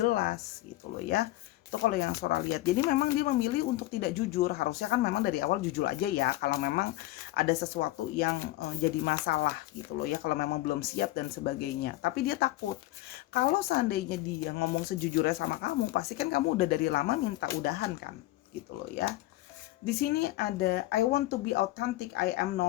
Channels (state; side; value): quieter; right; 17.2 dB